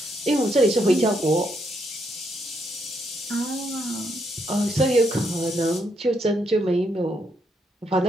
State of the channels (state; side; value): normal; both; correlation 0.76